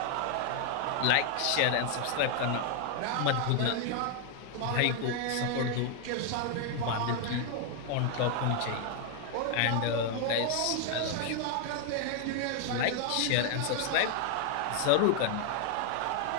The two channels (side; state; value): both; different; correlation 0.00